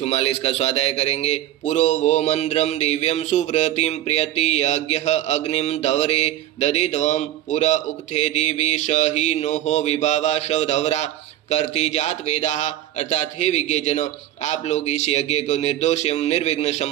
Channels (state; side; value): quieter; left; 13.3 dB